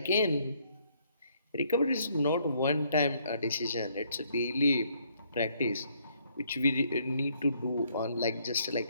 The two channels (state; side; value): inverted; both; correlation -0.68